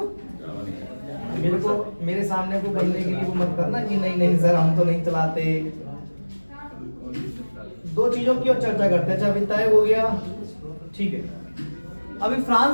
मेरे को मेरे सामने को बनने के लिए वो मत करना कि नहीं नहीं सर हम तो नहीं चलाते। दो चीजों की और चर्चा करते हैं। अच्छा अभी तय हो गया, ठीक है। अभी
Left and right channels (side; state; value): both; inverted; correlation -1.00